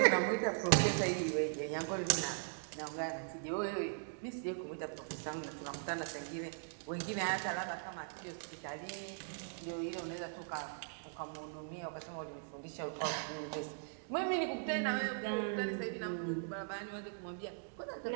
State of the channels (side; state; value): left; silent; digital silence